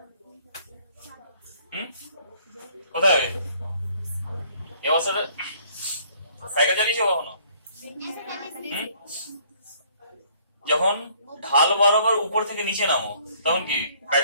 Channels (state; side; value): inverted; both; correlation -0.60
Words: কোথায় হয় এই অবস্থাটা? সাইকেল চালিয়েছো কখনো? যখন ঢাল বরাবর উপর থেকে নিচে নামো তখন কি